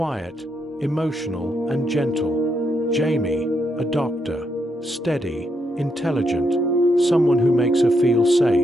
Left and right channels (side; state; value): both; normal; correlation 0.79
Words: emotional, and gentle. Jamie, a doctor, steady, intelligent, someone who makes her feel